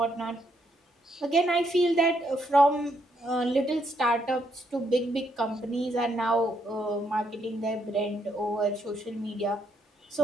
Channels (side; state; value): both; normal; correlation 0.75